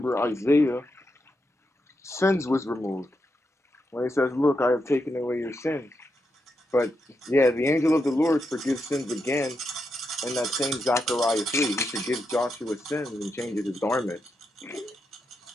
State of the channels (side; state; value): both; normal; correlation 0.84